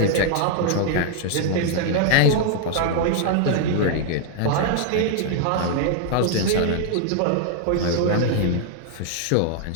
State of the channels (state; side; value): different; both; correlation 0.00